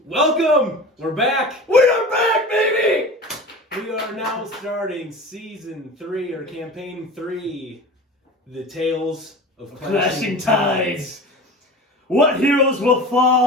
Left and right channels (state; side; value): normal; both; correlation 0.35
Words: Welcome! We're back! We are back, baby! We are now starting Season 3, or Campaign 3, The Tales of Clashing Tides. What heroes will